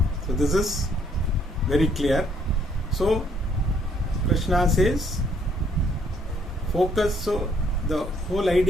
So this is very clear. So Krishna says, focus. So the whole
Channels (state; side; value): normal; both; correlation 0.66